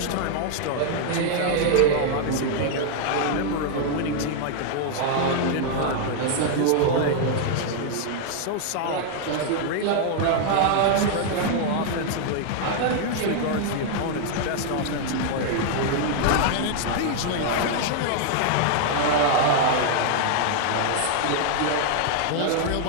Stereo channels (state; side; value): different; both; correlation 0.00